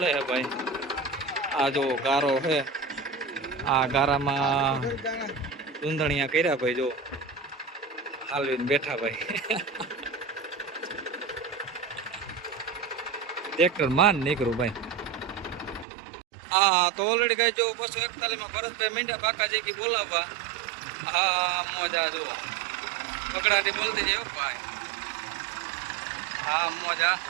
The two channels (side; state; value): left; drops out; at 15.9 s